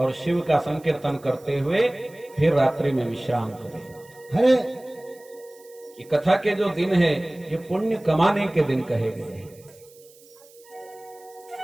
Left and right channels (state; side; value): noise; right; hiss, 26 dB below the sound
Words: शिव का संकीर्तन करते हुए फिर रात्रि में विश्राम करे। हरे ये कथा के जो दिन है ये पुण्य कमाने के दिन कहे गए हैं